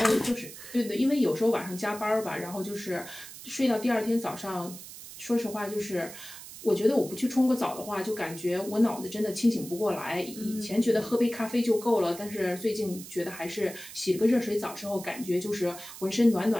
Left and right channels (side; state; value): right; noise; hiss, 14 dB below the sound